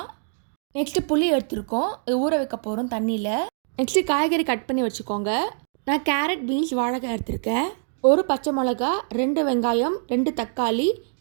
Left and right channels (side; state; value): left; silent; digital silence